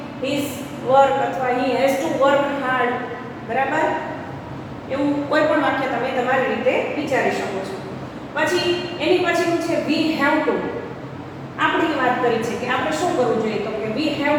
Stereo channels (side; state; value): both; identical; correlation 1.00